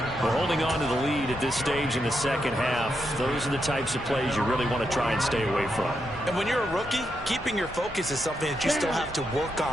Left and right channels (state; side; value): normal; both; correlation 0.83